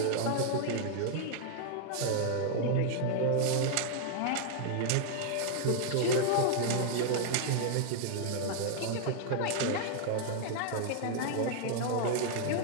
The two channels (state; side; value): different; both; correlation -0.01